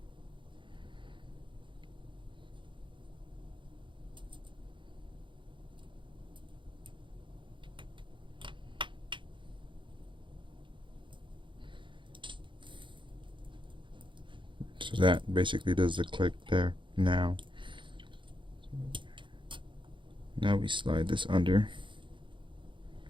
So that basically does the click there now. Now we slide this under.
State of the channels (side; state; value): left; late; 0.24 ms